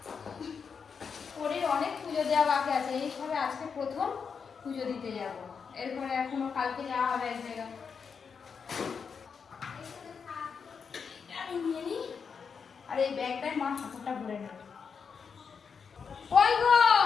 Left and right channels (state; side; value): quieter; right; 6.0 dB